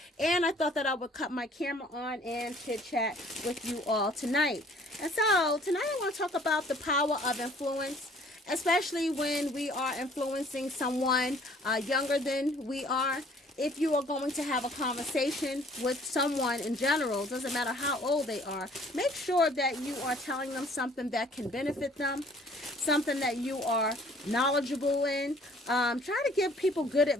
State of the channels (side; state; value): both; normal; correlation 0.57